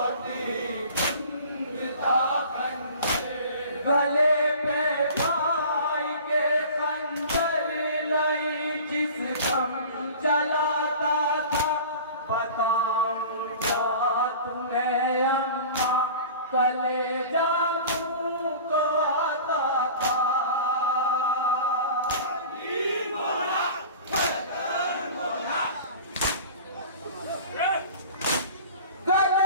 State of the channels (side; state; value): both; inverted; correlation -0.40